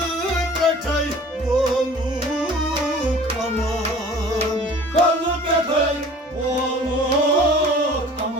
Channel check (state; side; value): normal; both; correlation 0.46